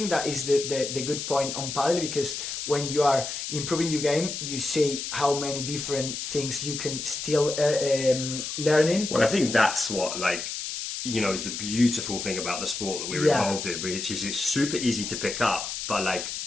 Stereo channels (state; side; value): noise; left; hiss, 5 dB below the sound